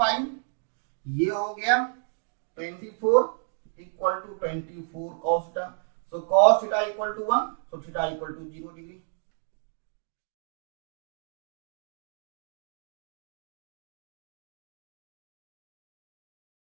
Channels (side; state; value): left; silent; digital silence